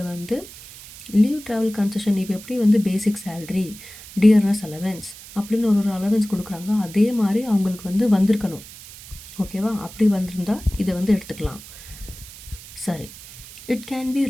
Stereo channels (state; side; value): noise; right; hiss, 17 dB below the sound